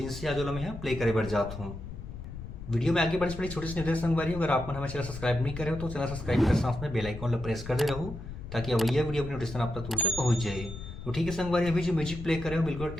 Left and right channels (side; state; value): left; noise; rumble, 10 dB below the sound